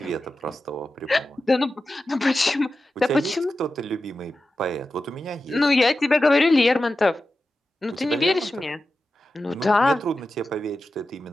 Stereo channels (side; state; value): both; normal; correlation 0.92